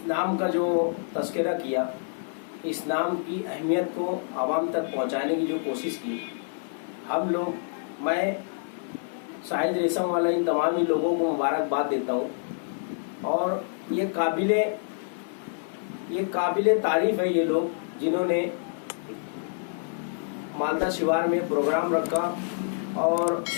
नाम का जो तस्करा किया, इस नाम की अहमियत को आवाम तक पहुंचाने की जो कोशिश की, हम लोग, मैं शाहिद रेशम वाला इन तमाम ही लोगों को मुबारकबाद देता हूं और ये काबिले तारीफ है ये लोग जिन्होंने मालदा शिवार में प्रोग्राम रखा और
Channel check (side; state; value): right; silent; digital silence